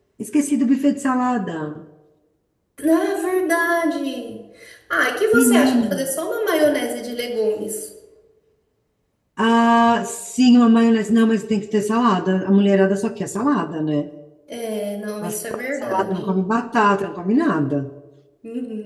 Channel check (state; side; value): identical; both; correlation 1.00